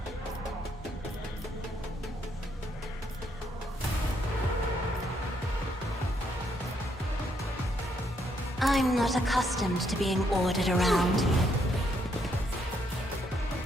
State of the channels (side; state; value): both; normal; correlation 0.74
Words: I'm not accustomed to being ordered around.